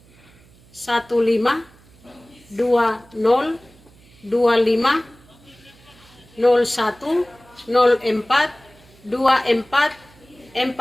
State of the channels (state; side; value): noise; right; hum, 27 dB below the sound